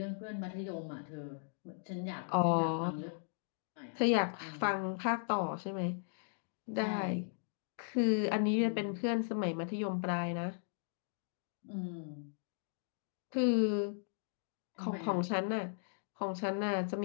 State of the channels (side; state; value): right; silent; digital silence